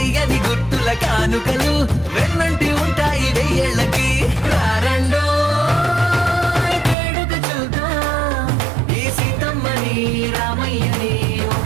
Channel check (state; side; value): drops out; left; at 7.0 s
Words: గుర్తుల కానుకలు వెన్నంట